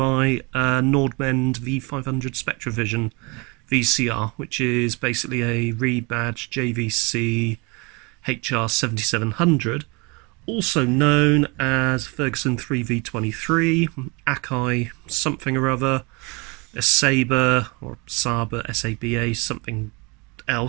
Nordmend V500 Spectravision VCR, which is basically a rebadged JVC HR7700, also known as Ferguson 3V23, Akai something or other, a Saber or Saba, SABA, something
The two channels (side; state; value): left; quieter; 28.5 dB